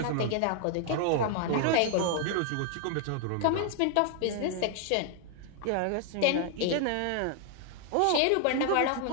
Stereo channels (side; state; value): both; different; correlation 0.00